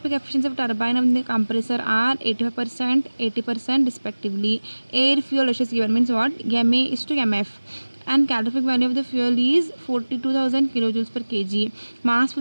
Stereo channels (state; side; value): inverted; both; correlation -1.00